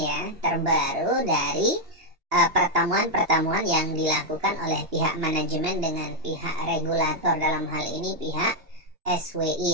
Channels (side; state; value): left; late; 2.9 ms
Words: terbaru dari pertemuan-pertemuan yang dilakukan oleh pihak manajemen dengan pihak regulator, dalam hal ini pihak SWI